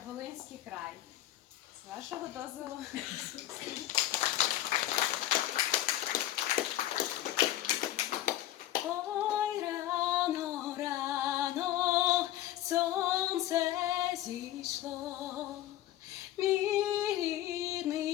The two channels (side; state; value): right; quieter; 13.7 dB